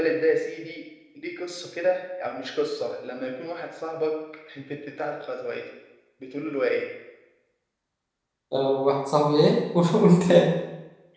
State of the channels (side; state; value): both; identical; correlation 1.00